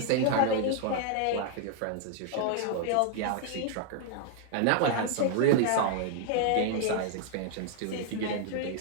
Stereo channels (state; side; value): different; both; correlation 0.00